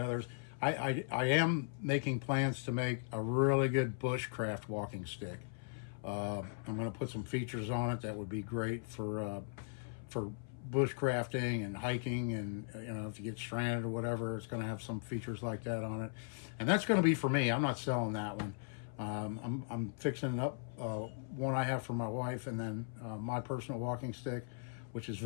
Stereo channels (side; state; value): right; silent; 52 dB below the other